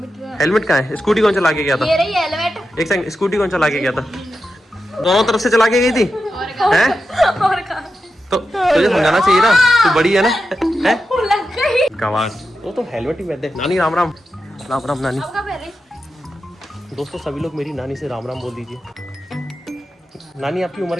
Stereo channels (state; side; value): normal; both; correlation 0.89